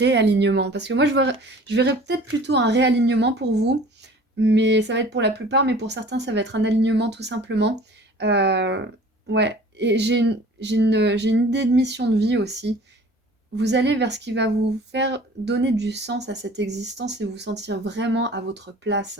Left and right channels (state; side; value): normal; both; correlation 0.47